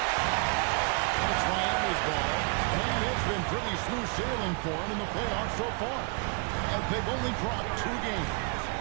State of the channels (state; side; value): quieter; left; 33.9 dB